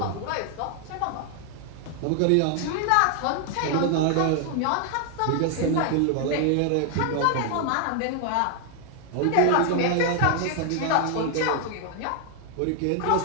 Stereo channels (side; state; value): both; different; correlation 0.00